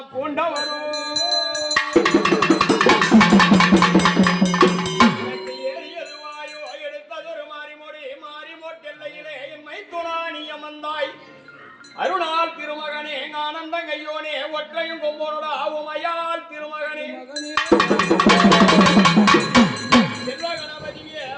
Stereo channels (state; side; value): identical; both; correlation 1.00